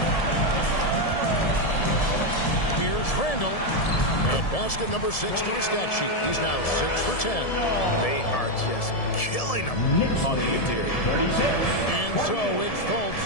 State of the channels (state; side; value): late; right; 1.7 ms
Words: Here's Randall. At basket number 6 to his stat sheet. He's now 6 for 10. They are just killing them on the interior. And so it's Fultz